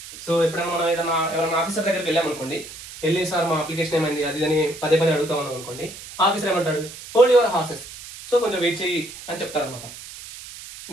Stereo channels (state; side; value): noise; right; hiss, 14 dB below the sound